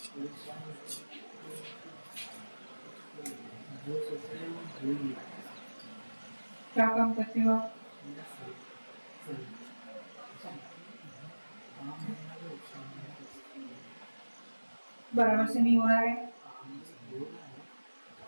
क्या काम करते हो आप? बराबर से नहीं हो रहा है।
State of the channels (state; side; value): inverted; both; correlation -1.00